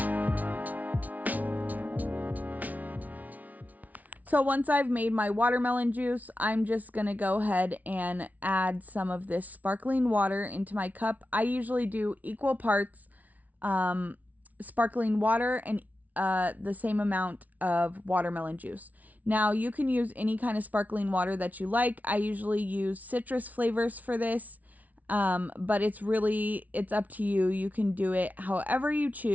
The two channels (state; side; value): late; left; 0.073 ms